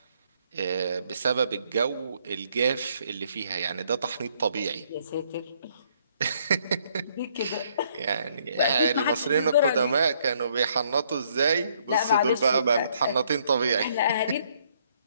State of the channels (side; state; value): both; inverted; correlation -0.68